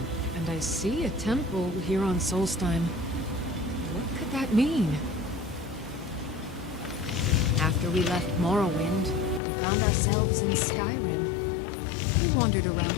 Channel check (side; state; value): right; drops out; at 9.4 s